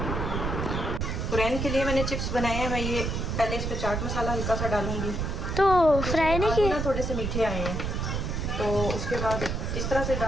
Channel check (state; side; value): noise; right; rumble, 2 dB below the sound